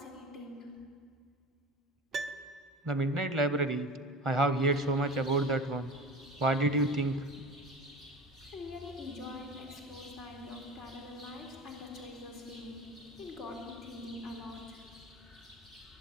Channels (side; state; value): both; normal; correlation 0.34